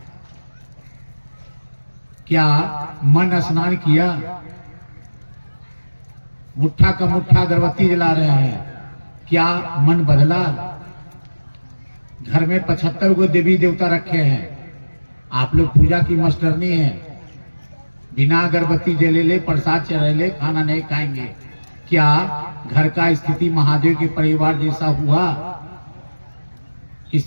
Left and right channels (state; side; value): inverted; both; correlation -1.00